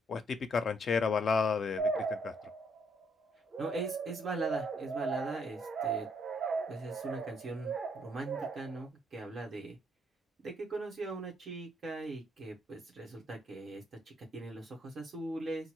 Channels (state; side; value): normal; both; correlation 0.70